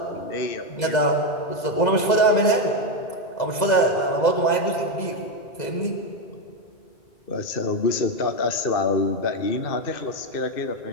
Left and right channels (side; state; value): right; late; 2.0 ms